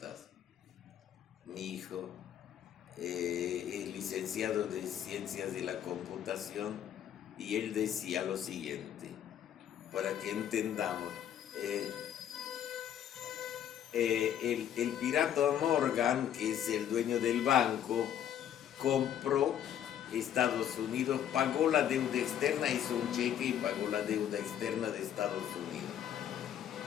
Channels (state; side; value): quieter; right; 10.1 dB